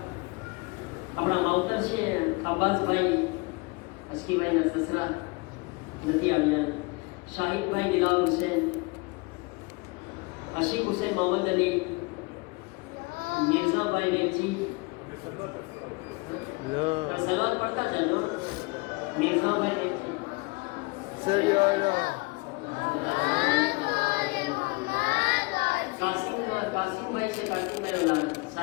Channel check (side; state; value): right; quieter; 27.3 dB